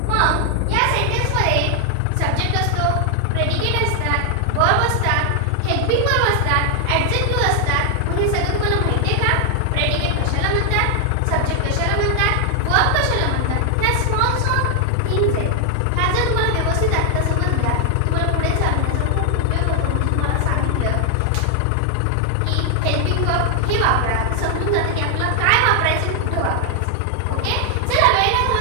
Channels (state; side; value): different; both; correlation 0.00